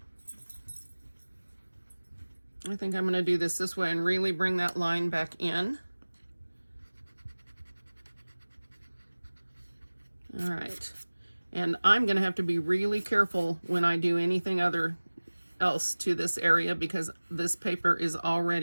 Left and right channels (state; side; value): inverted; both; correlation -1.00